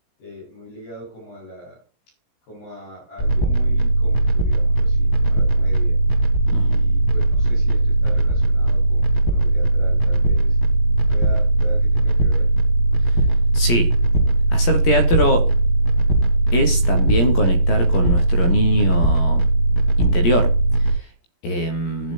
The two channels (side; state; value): right; late; 17 ms